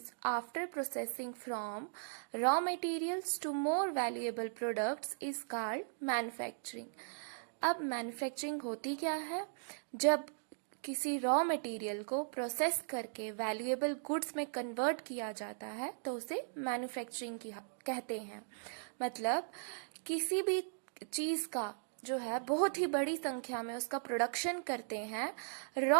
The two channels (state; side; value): silent; left; digital silence